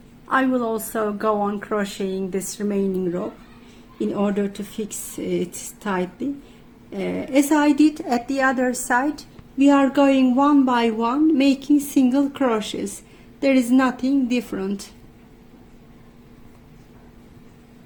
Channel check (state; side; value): identical; both; correlation 1.00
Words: I will also go on crocheting this remaining rope in order to fix it tightly. As I did at the other side, we are going one by one making single crochets. There is nothing different.